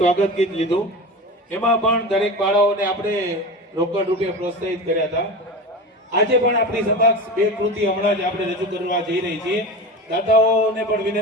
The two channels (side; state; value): both; normal; correlation 0.28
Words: ગીત લીધું. એમાં પણ દરેક બાળાઓને આપણે રોકડ રૂપે પ્રોત્સાહિત કર્યા હતા. આજે પણ આપણી સમક્ષ બે કૃતિ હમણાં જ આપણે રજૂ કરવા જઈ રહી છીએ. દાદાઓને પણ